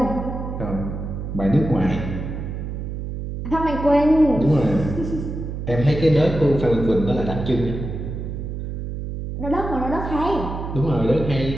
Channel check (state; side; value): noise; right; hum, 6 dB below the sound